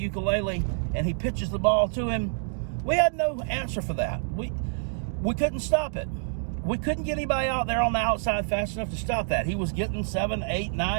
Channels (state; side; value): silent; left; digital silence